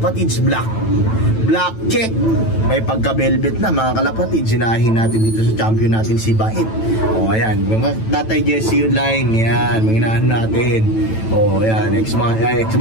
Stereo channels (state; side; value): late; right; 9.1 ms